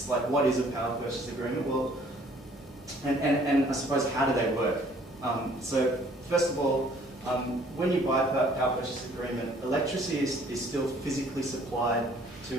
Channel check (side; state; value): both; normal; correlation 0.58